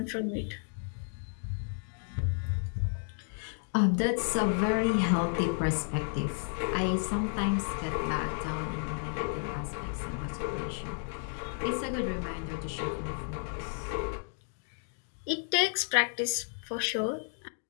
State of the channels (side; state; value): right; silent; 56 dB below the other